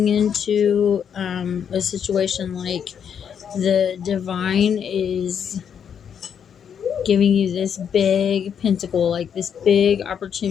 into a situation. Like the divine is giving you this big pentacle, like this big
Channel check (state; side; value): quieter; right; 7.9 dB